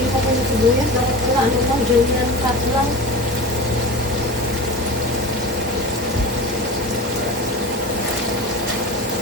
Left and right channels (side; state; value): both; normal; correlation 0.30